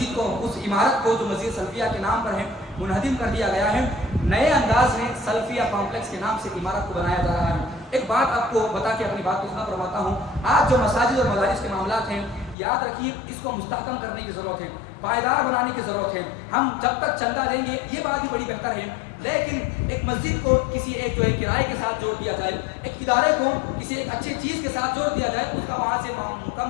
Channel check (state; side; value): drops out; right; at 12.6 s